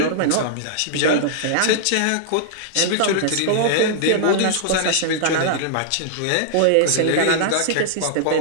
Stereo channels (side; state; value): both; different; correlation -0.01